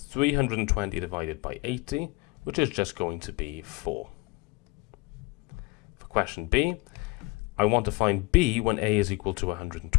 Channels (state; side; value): quieter; right; 24.8 dB